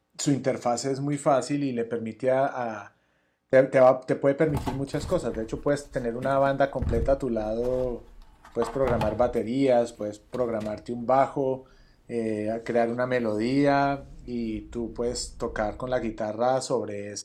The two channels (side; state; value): both; identical; correlation 1.00